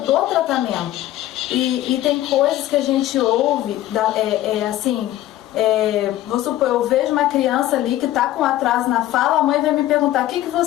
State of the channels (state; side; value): quieter; right; 14.4 dB